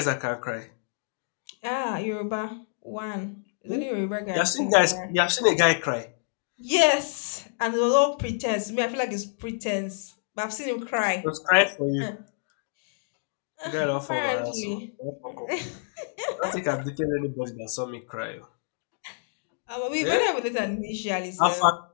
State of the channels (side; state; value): right; silent; digital silence